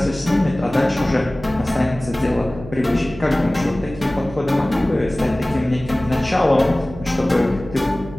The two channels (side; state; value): right; noise; hum, 14 dB below the sound